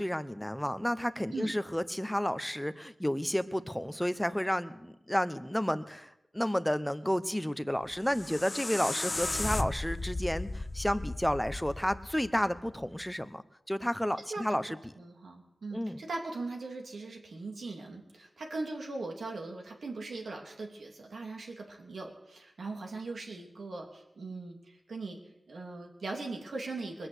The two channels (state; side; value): normal; both; correlation 0.98